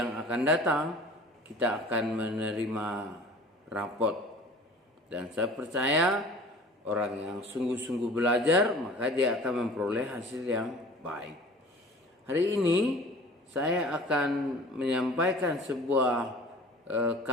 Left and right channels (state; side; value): normal; both; correlation 0.44